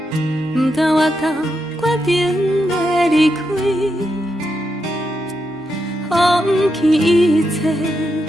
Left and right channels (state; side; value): normal; both; correlation 0.84